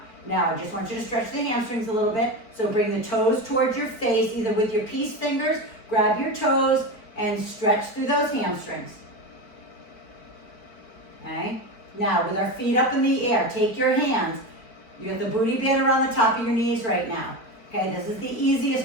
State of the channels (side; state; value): right; late; 4.6 ms